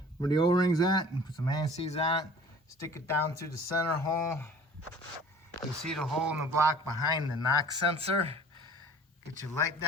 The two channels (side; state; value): both; normal; correlation 0.47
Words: where the O-ring's at, and put some ACs on it. Stick it down through the center hole. You see the hole in the block behind the knock sensor. Get your light